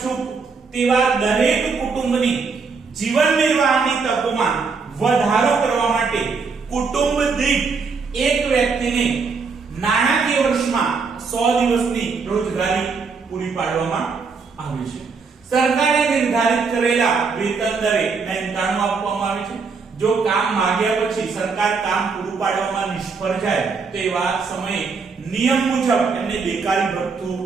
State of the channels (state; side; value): quieter; left; 4.9 dB